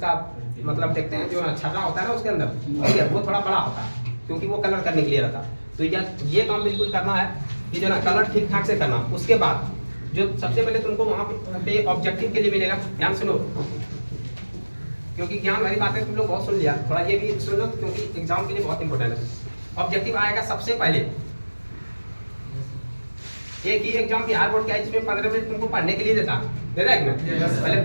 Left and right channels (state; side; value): inverted; both; correlation -1.00